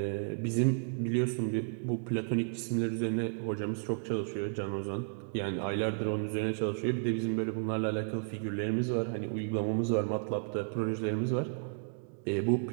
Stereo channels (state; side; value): silent; left; digital silence